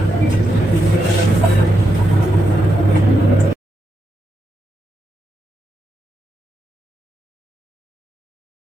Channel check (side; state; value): both; normal; correlation 0.84